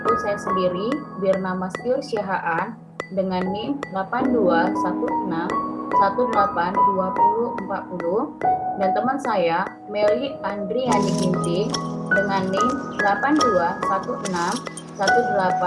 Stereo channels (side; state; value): both; identical; correlation 1.00